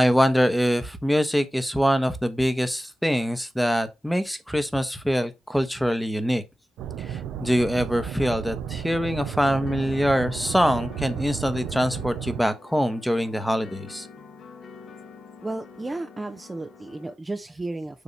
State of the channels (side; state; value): both; normal; correlation 0.95